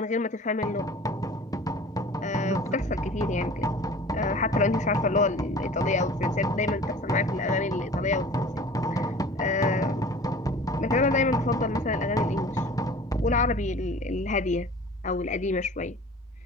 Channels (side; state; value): both; normal; correlation 0.43